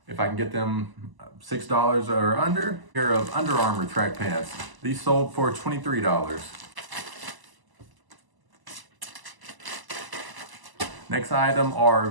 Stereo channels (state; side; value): late; left; 1.0 ms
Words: If I can get them $6 or under. A pair of Under Armour track pants. These sold for $23. Next item are